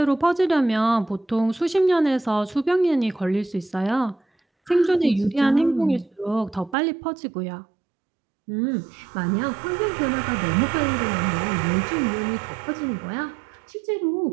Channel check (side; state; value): left; drops out; at 6.8 s